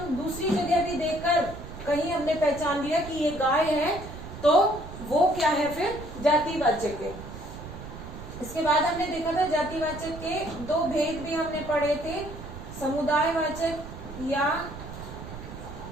दूसरी जगह भी देखकर कहीं हमने पहचान लिया कि ये गाय है, तो वो क्या है, फिर जातिवाचक है। इसके बाद हमने देखा था जातिवाचक के दो भेद भी हमने पढ़े थे, समुदायवाचक या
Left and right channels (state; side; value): noise; right; rumble, 12 dB below the sound